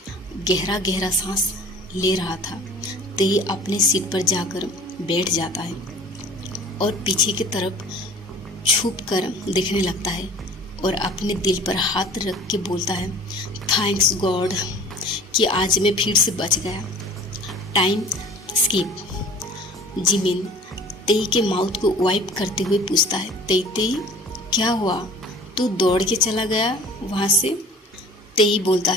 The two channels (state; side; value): normal; both; correlation 0.46